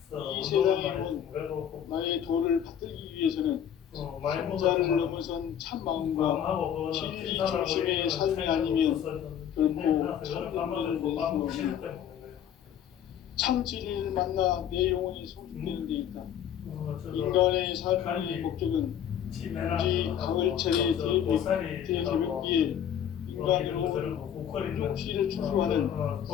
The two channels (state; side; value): quieter; right; 9.5 dB